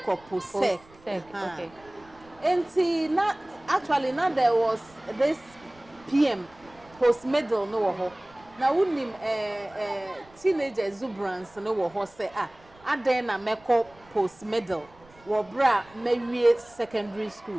post sec. Okay. Enti na actually na there was this PM post middle no wo ho. Na unim teenage exuberance no wo ho say aden na meko post middle wo bra mewie secondary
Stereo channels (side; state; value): right; noise; rumble, 27 dB below the sound